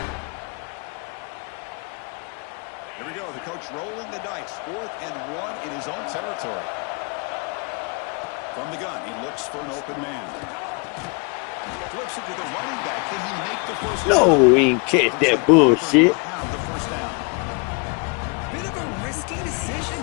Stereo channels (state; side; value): quieter; right; 32.3 dB